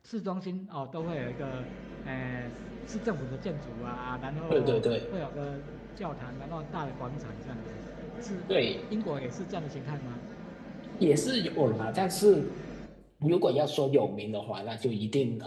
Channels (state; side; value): identical; both; correlation 1.00